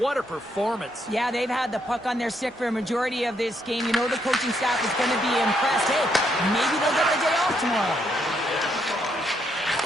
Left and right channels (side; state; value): both; normal; correlation 0.75